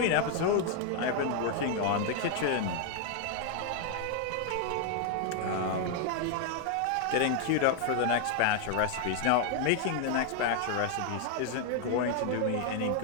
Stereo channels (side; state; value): both; different; correlation 0.00